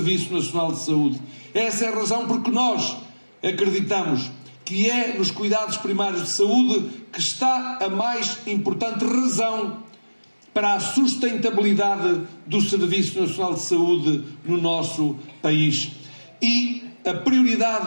Nacional de Saúde. Essa é a razão porque nós acreditamos que é nos cuidados primários de saúde que está a mais importante razão para a sustentabilidade do Serviço Nacional de Saúde no nosso país. E a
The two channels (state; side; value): inverted; both; correlation -1.00